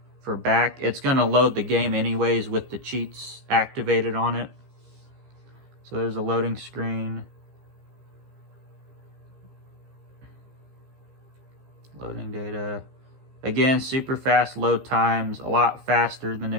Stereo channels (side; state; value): left; late; 15 ms